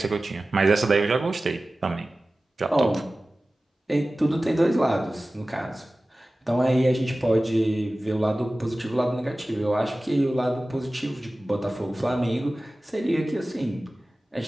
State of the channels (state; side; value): normal; both; correlation 0.96